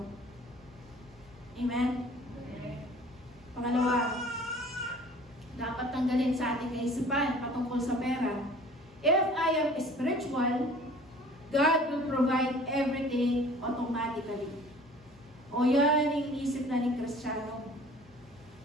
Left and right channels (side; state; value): both; normal; correlation 0.49